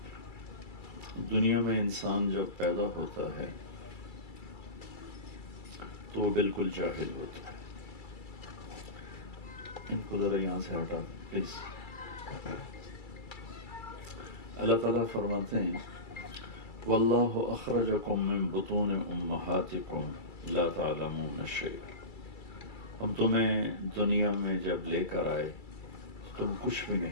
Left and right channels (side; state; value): right; late; 2.3 ms